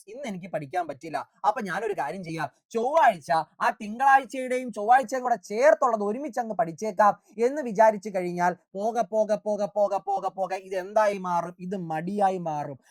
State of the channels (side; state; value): both; identical; correlation 1.00